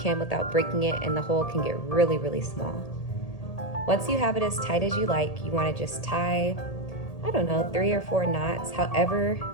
without breaking it, and the hole can get really, really small. Once you have it as tight as you like, you want to just tie, I don't know, 3 or 4 knots, however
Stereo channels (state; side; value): late; right; 1.8 ms